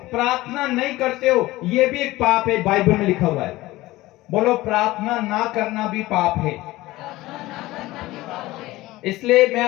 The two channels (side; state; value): right; quieter; 18.2 dB